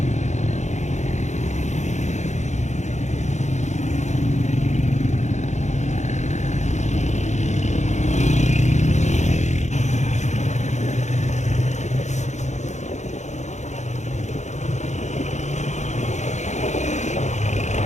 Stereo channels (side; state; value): right; late; 0.34 ms